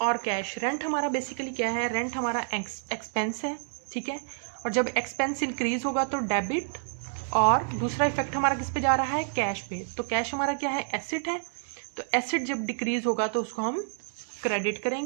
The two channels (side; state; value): left; silent; digital silence